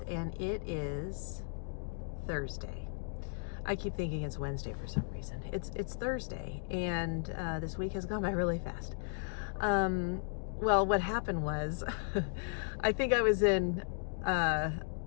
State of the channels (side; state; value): right; silent; digital silence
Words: and it is Thursday. I keep thinking it's Wednesday for some reason. It's Thursday, and this week has gone by really fast. Well, what happened was, I think I was in